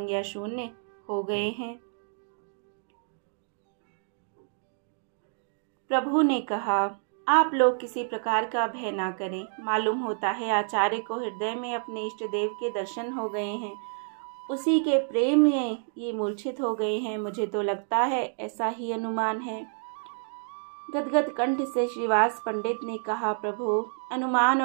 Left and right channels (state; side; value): silent; left; digital silence